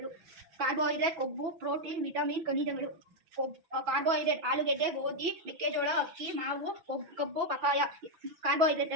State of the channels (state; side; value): late; left; 6.1 ms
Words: ಕಾರ್ಬೋಹೈಡ್ರೇಟ್ ಕೊಬ್ಬು, ಪ್ರೋಟೀನ್, ವಿಟಮಿನ್, ಖನಿಜಗಳು. ಕಾರ್ಬೋಹೈಡ್ರೇಟ್ ಆಲೂಗೆಡ್ಡೆ, ಗೋಧಿ, ಮೆಕ್ಕೆಜೋಳ, ಅಕ್ಕಿ, ಮಾವು, ಕಬ್ಬು, ಪಪಾಯ ಕಾರ್ಬೋಹೈಡ್ರೇಟ್